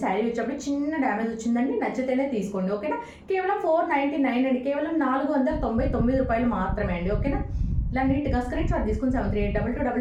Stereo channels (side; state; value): both; identical; correlation 1.00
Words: శారీ వచ్చేప్పుడు. చిన్న డ్యామేజ్ వచ్చిందండి, నచ్చితేనే తీసుకోండి. ఓకేనా, కేవలం 499 అండి, కేవలం 499 రూపాయలు మాత్రమే అండి. ఓకేనా, ఇలా నీట్గా స్క్రీన్ షాట్ తీసుకుని